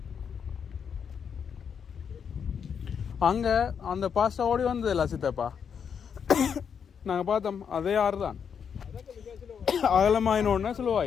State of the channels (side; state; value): right; quieter; 7.2 dB